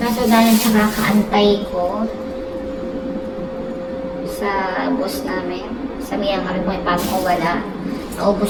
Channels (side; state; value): both; identical; correlation 1.00